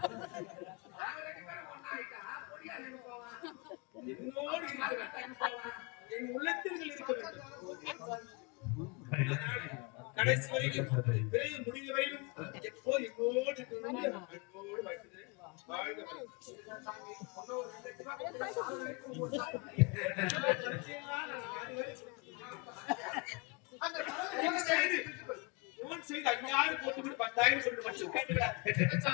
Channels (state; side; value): quieter; right; 28.4 dB